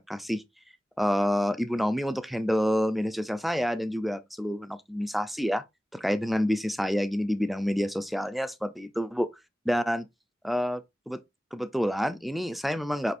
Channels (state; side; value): normal; both; correlation 0.96